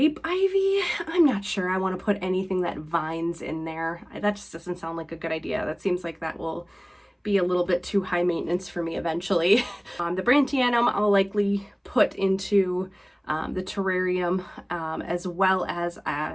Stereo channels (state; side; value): identical; both; correlation 1.00